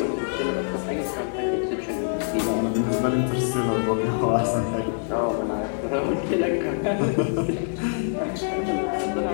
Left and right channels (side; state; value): right; silent; 62 dB below the other